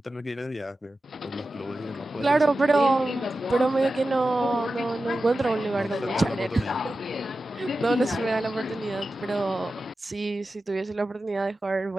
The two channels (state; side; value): normal; both; correlation 0.93